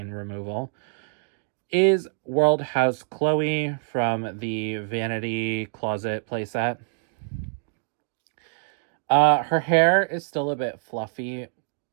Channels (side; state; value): left; silent; digital silence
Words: removal, is World House Chloe from the Vanity Closet playset. Her hair is still a bit fluffy,